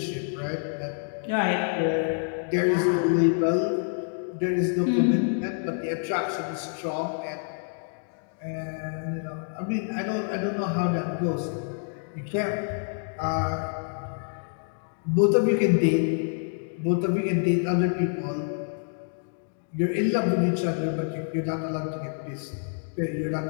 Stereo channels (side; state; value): right; silent; 60 dB below the other